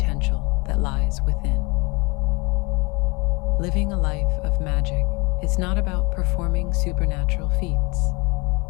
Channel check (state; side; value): quieter; right; 27.0 dB